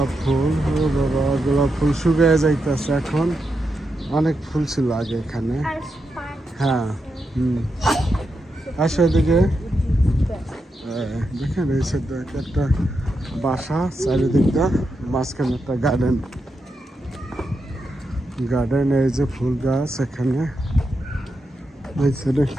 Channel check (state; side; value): normal; both; correlation 0.86